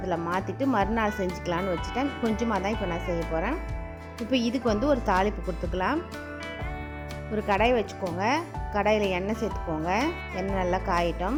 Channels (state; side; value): identical; both; correlation 1.00